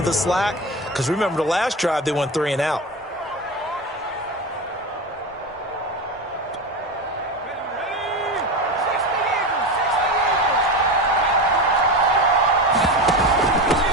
the slack. Because remember, the last drive, they went 3 and out.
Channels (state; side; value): normal; both; correlation 0.23